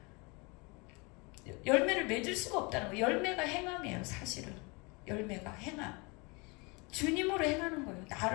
열매를 맺을 수가 없다는 거예요. 열매가 행함이에요. 사실은 열매가 행함. 주님으로 행하는 거예요.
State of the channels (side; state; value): right; quieter; 28.7 dB